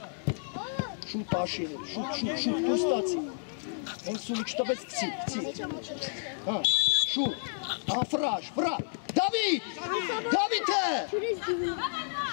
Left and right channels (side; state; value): right; silent; digital silence